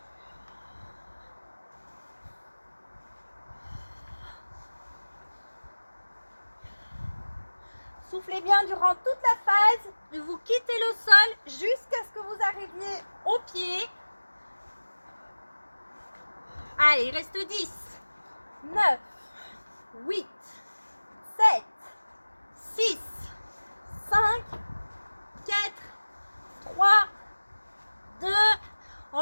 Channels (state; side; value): inverted; both; correlation -1.00